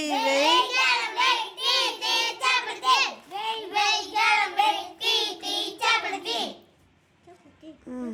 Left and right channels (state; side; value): identical; both; correlation 1.00